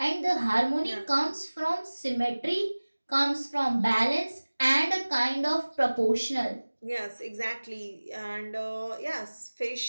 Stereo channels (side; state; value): both; inverted; correlation -1.00